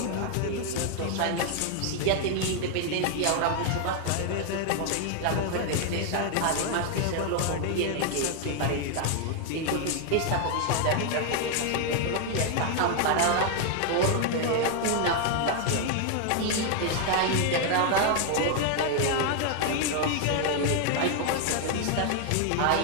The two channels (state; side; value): different; both; correlation 0.00